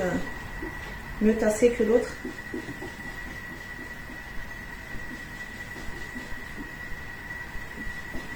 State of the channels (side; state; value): both; identical; correlation 1.00